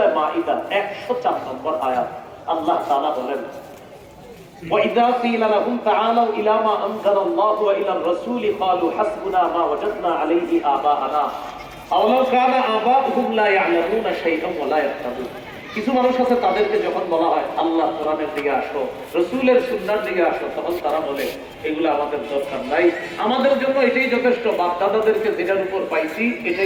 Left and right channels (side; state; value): both; identical; correlation 1.00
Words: মাইদা 104 নম্বর আয়াত। আল্লাহ তাআলা বলেন, وَإِذَا قِيلَ لَهُمْ تَعَالَوْا إِلَى مَا أَنزَلَ اللَّهُ وَإِلَى الرَّسُولِ قَالُوا حَسْبُنَا مَا وَجَدْنَا عَلَيْهِ آبَاءَنَا أَوَلَوْ كَانَ آبَاؤُهُمْ لَا يَعْلَمُونَ شَيْئًا وَلَا يَهْتَدُونَ। কিছু মানুষ আছে, তাদেরকে যখন বলা হয় আল্লাহ কোরআনের দিকে আসো, রাসূলের সুন্নাহর দিকে আসো, তখন তারা বলে এগুলো আমাদের দরকার নাই, আমাদের জন্য এটাই যথেষ্ট, বাপ দাদাদেরকে যেটার উপর পাইছি